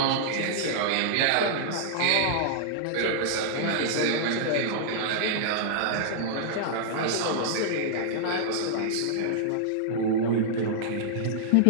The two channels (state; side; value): different; both; correlation -0.01